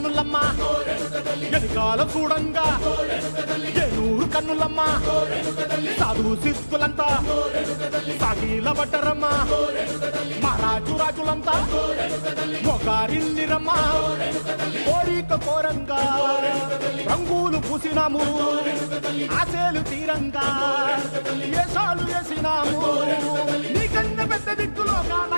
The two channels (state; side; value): inverted; both; correlation -1.00